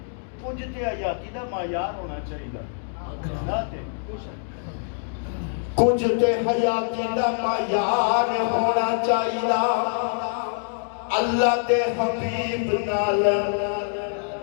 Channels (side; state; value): right; silent; digital silence